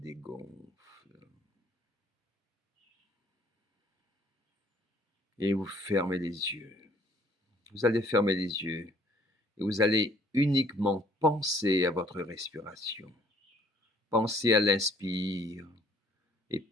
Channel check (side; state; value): both; normal; correlation 0.60